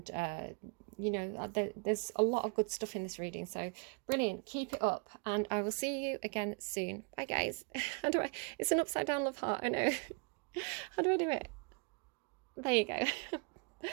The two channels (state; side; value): quieter; left; 34.1 dB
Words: you know, there's a lot of good stuff in this reading. So brilliant, keep it up, and I will see you again soon. Bye guys. How do I, it's an upside down love heart, I know. How do I do it? There you go.